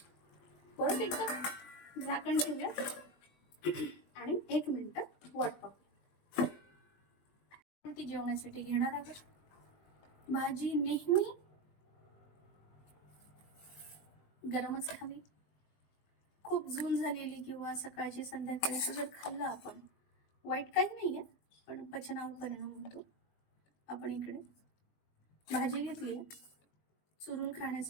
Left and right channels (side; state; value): right; late; 20 ms